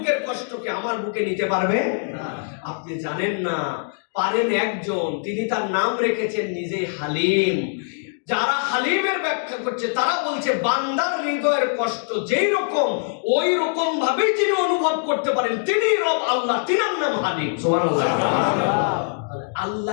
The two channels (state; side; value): silent; right; digital silence